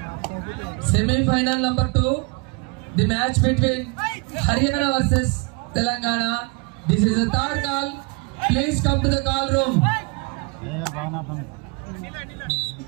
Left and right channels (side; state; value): left; quieter; 30.9 dB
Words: Semi-final number 2. The match between Haryana versus Telangana. This is the third call. Please come to the call room.